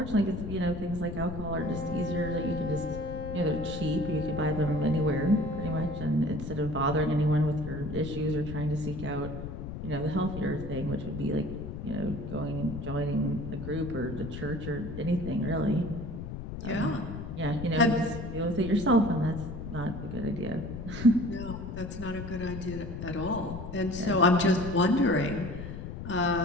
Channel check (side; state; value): left; noise; rumble, 8 dB below the sound